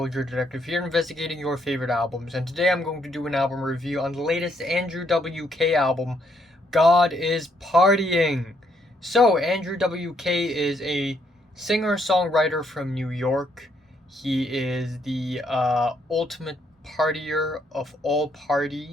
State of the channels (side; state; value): both; normal; correlation 0.72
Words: Detective here, investigating your favorite albums, and today I'm going to do an album review on the latest Andrew WK album, God is Partying. So, Andrew WK is a singer-songwriter from New York. He is the ultimate partier of all